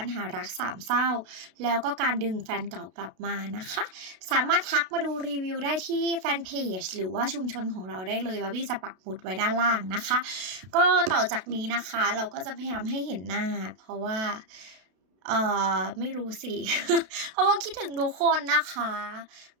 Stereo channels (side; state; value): left; late; 32 ms